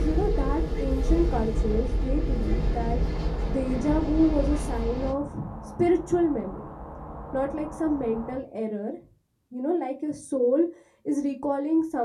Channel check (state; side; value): identical; both; correlation 1.00